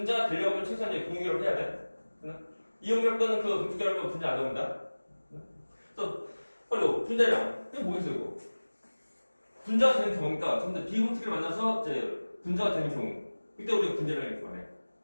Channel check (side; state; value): both; inverted; correlation -1.00